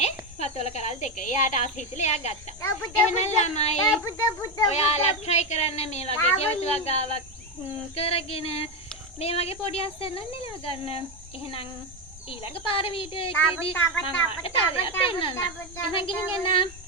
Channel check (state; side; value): normal; both; correlation 0.10